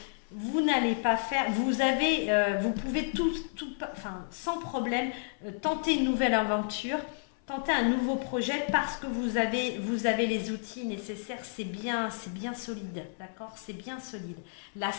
vous n'allez pas faire, vous pouvez sans problème, tenter une nouvelle aventure, tenter un nouveau projet parce que vous avez les outils nécessaires, c'est bien solide, d'accord? C'est bien solide. La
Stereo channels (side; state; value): right; silent; 57 dB below the other